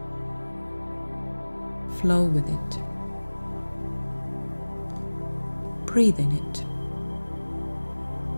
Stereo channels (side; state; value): both; inverted; correlation -1.00